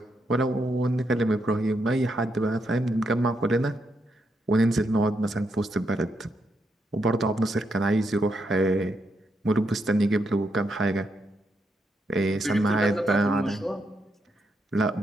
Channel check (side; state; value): both; normal; correlation 0.80